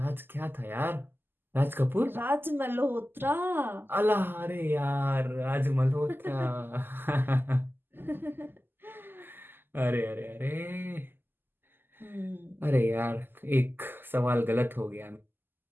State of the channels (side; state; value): left; late; 0.097 ms